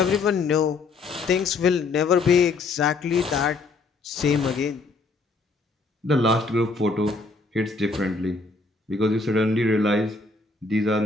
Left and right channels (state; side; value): quieter; right; 3.9 dB